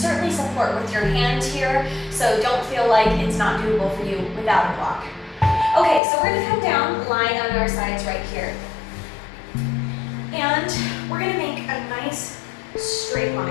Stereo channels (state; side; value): drops out; right; at 6.0 s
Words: support with your hand here, so don't feel like it's not doable for you without a block. Okay, so we're going to come down, lying on our sides right here. And we're going to make a nice straight